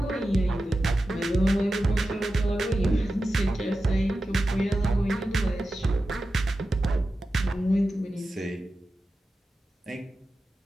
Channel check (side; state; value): both; normal; correlation 0.93